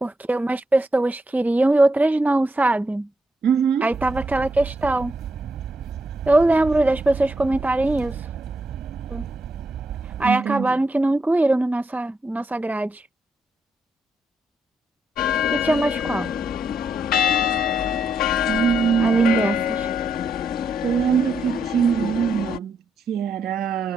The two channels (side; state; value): both; normal; correlation 0.80